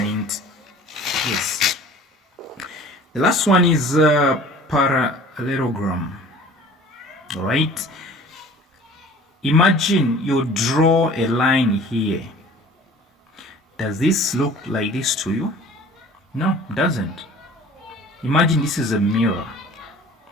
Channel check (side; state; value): both; normal; correlation 0.46